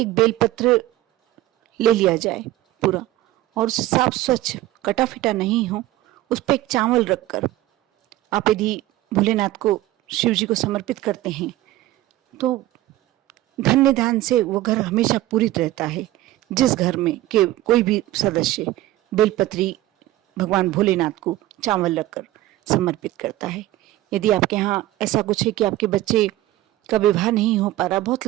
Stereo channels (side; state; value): left; quieter; 15.7 dB